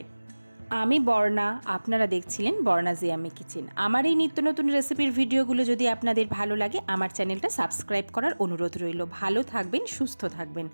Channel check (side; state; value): both; inverted; correlation -1.00